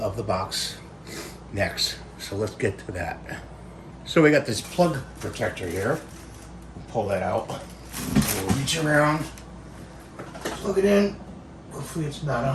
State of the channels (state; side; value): identical; both; correlation 1.00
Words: the box next, so let's get to that. So we got this plug protector here. We'll pull that out. We'll reach around, plug it in. Hopefully it's not